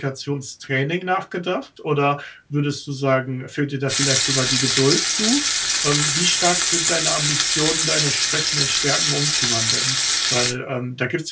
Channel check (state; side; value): identical; both; correlation 1.00